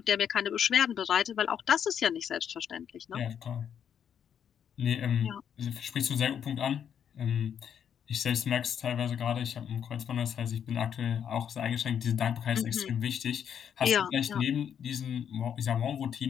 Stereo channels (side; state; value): right; quieter; 8.5 dB